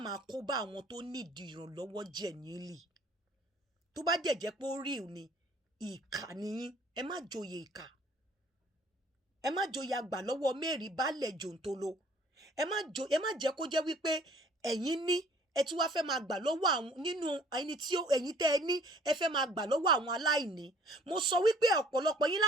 máa kó bá àwọn tó nídìí ìrànlọ́wọ́ genuinely tó bá jẹ́ pé ó real ni ìkà nìyín ẹ má joyè ìkà ẹ má joyè àgbà lọ́wọ́ mẹ́rin baálẹ̀ jòǹtolo ẹ má jẹ́ kó jẹ́ wípé ẹ̀yin ní ẹ tún wá fẹ́ máa gbà lọ́wọ́ àwọn nínú ẹni tí ẹ̀yin tẹ́ ẹ ní ẹ fẹ́ máa gbà lọ́wọ́ àwọn aláìní mo sọ wípé ọ̀pọ̀lọpọ̀ yín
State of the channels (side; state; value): both; normal; correlation 0.55